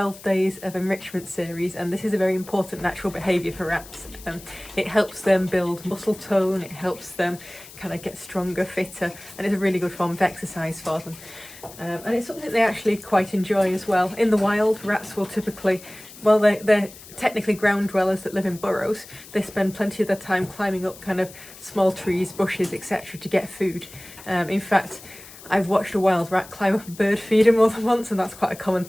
days of enrichment series, and this is a very important natural behaviour for rats. It helps them build muscle tone, it helps them kind of get stronger, fitter, and it's a really good form of exercise for them. And it's something that they actually quite enjoy as well. In the wild, rats will typically, well, they're technically ground dwellers that live in burrows. They spend plenty of their time climbing up kind of small trees, bushes, etc. to get food. In fact, I've watched a wild rat climb up a bird feeder more than once, and that's quite a common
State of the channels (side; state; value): left; noise; hiss, 18 dB below the sound